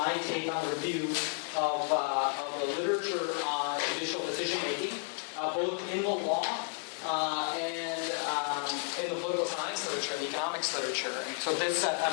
take on a review of the literature on judicial decision-making, both in the law and in the political science literature and the economics literature. And so this, I'm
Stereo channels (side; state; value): right; quieter; 39.0 dB